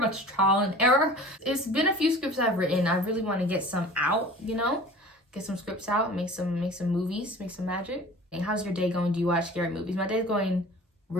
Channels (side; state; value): both; normal; correlation 0.42